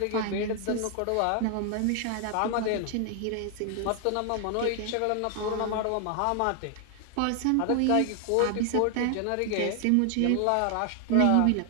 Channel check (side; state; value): both; different; correlation 0.00